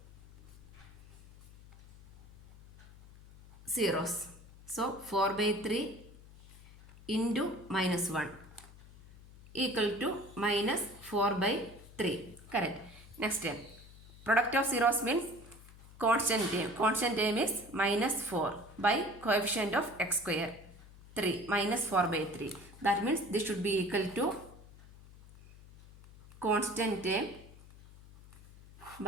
zeros. So 4 by 3 into minus 1 equal to minus 4 by 3, correct. Next, product of zeros means constant term. Constant term is minus 4 by coefficient of x square 3, minus 4 by 3. That means this should be equal to constant term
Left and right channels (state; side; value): noise; left; hum, 20 dB below the sound